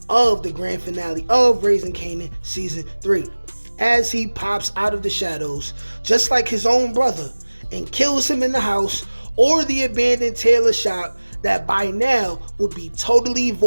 of the grand finale of Raising Kanan Season 3. As he pops out of the shadows, just like his own brother, and kills him in the house or the abandoned Tailor shop that by now would be totally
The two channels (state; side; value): inverted; both; correlation -1.00